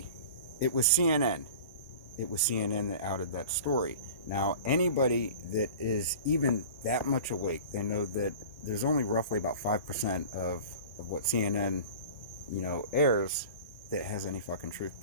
it was CNN. It was CNN that outed that story. Now, anybody that is even that much awake, they know that there's only roughly about 5% of what CNN, airs that has any fucking truth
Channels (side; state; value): both; inverted; correlation -0.38